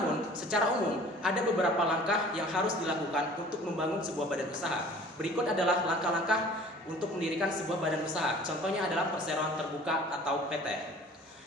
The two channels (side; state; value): both; normal; correlation 0.48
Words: secara umum, ada beberapa langkah yang harus dilakukan untuk membangun sebuah badan usaha. Berikut adalah langkah-langkah untuk mendirikan sebuah badan usaha. Contohnya adalah perseroan terbuka atau PT.